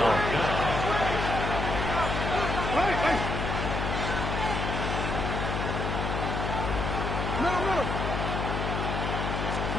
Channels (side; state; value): left; noise; hum, 2 dB below the sound